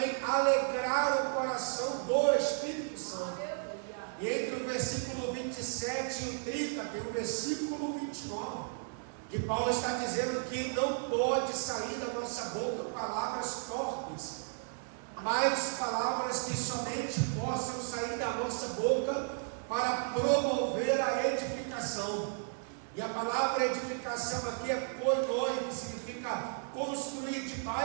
alegrar o coração do Espírito Santo. E entre o versículo 27 e o 30 tem o versículo 29, que Paulo está dizendo que não pode sair da nossa boca palavras torpes, mas palavras que somente possam sair da nossa boca para promover a edificação. E a palavra edificação aqui é koinoi, que significa construir de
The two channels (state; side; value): silent; left; 55 dB below the other